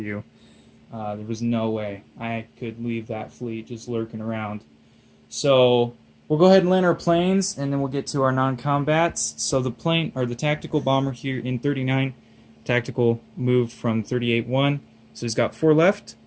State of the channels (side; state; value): both; identical; correlation 1.00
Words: you. There was no way I could leave that fleet just lurking around. So we'll go ahead and land our planes, and then we'll get to our non-combats. So the plane, or the tactical bomber here in 39, tactical moved from 38-1. So he's got 4 left.